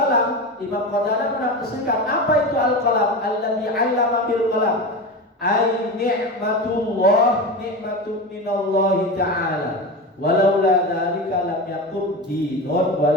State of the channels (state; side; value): normal; both; correlation 0.24